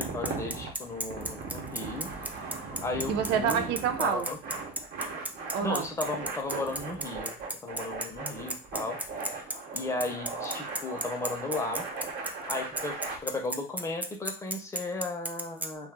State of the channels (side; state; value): both; normal; correlation 0.23